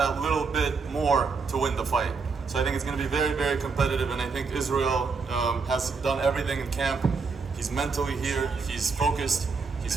little bit more to win the fight. So I think it's going to be very, very competitive, and I think Israil has done everything in camp. He's mentally here, he's focused, he's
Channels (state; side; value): quieter; left; 4.9 dB